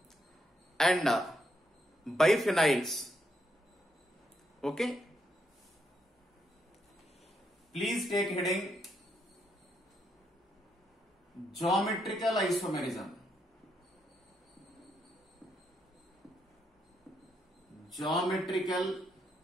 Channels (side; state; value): both; normal; correlation 0.78